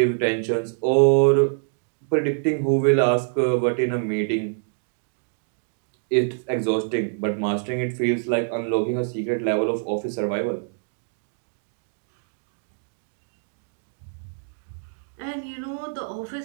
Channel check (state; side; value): silent; left; digital silence